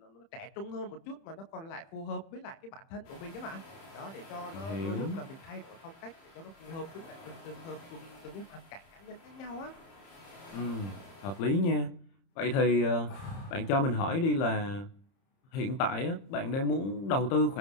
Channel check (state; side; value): late; right; 30 ms